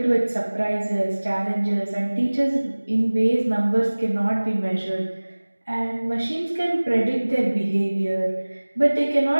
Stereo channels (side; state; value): both; inverted; correlation -1.00